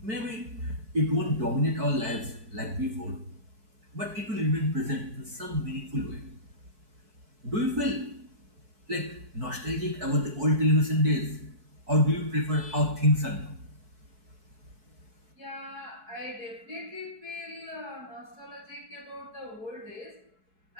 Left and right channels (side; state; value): left; late; 4.6 ms